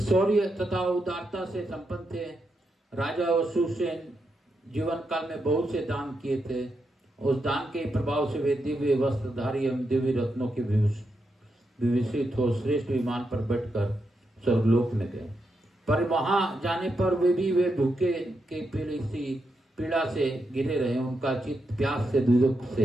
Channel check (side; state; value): both; normal; correlation 0.84